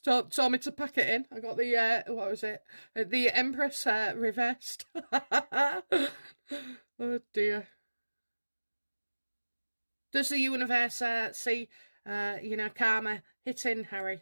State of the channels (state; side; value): inverted; both; correlation -1.00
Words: me to pack it in. I got the, what was it? The Empress reversed. Oh dear. Does the universe see, karma hitting Harry?